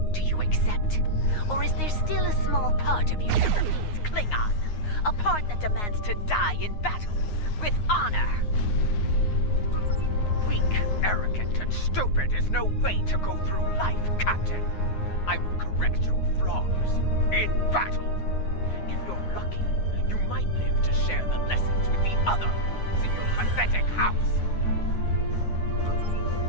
Do you accept? Or is there still a small part of you that remains Klingon? A part that demands to die in battle, with honor? Weak, arrogant, and stupid is no way to go through life, Captain. I will correct your flaws in battle. If you're lucky, you might live to share the lessons with the others in your pathetic house.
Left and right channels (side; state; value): right; late; 9.6 ms